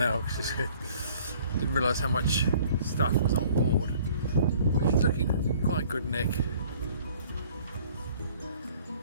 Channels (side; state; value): both; inverted; correlation -0.54